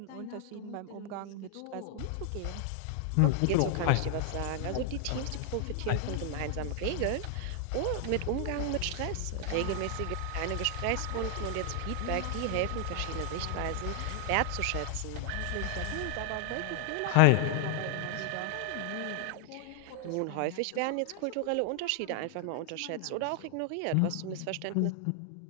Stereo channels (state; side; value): different; both; correlation 0.00